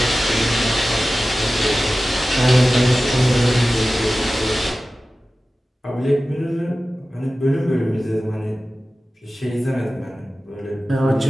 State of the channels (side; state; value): both; normal; correlation 0.95